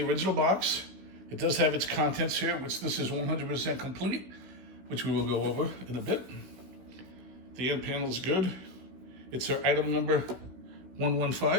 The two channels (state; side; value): late; left; 16 ms